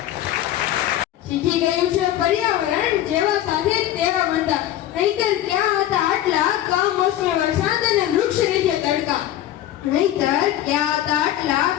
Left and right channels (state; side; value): quieter; right; 12.9 dB